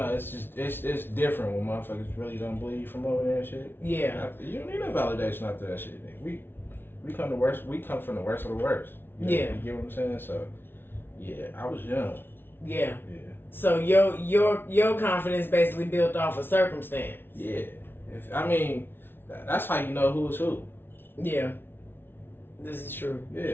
it's just, it's different when motherfuckers really don't believe from over there and shit. Yeah. You don't need no validation after that shit, nigga. We come from the worst of the worst. You know, Yeah. You get what I'm saying? So, yeah, I was young. Yeah. Yeah. So your confidence basically built off of circumstance. Yeah. That's how you know who is who. Yeah. This is true.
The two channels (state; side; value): late; right; 0.11 ms